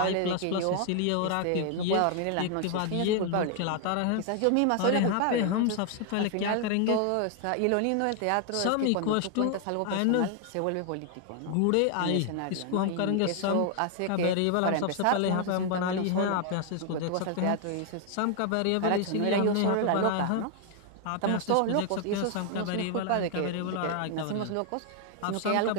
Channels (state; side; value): different; both; correlation 0.00